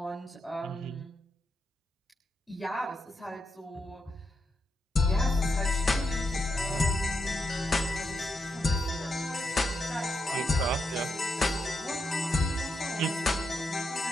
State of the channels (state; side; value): normal; both; correlation 0.83